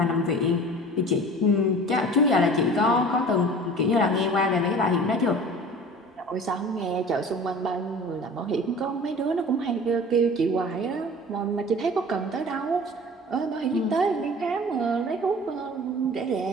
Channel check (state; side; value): normal; both; correlation 0.42